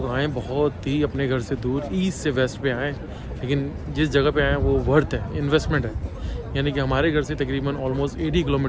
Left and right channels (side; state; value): both; identical; correlation 1.00